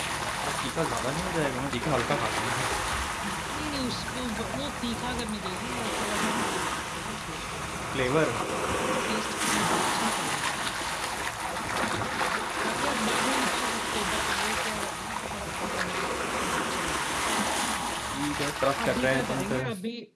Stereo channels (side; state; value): both; identical; correlation 1.00